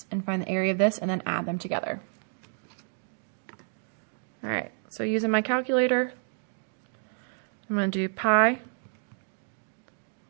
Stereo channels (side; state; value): left; silent; 58 dB below the other